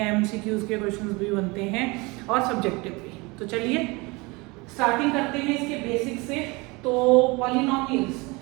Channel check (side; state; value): left; quieter; 25.5 dB